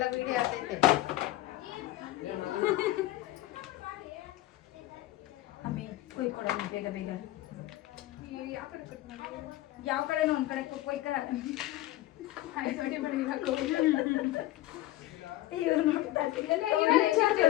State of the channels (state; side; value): quieter; right; 16.2 dB